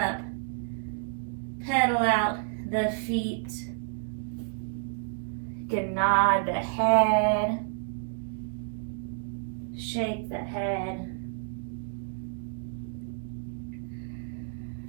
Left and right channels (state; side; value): silent; left; digital silence